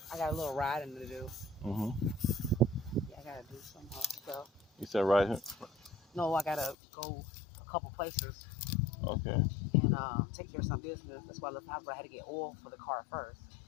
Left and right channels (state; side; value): drops out; right; at 6.8 s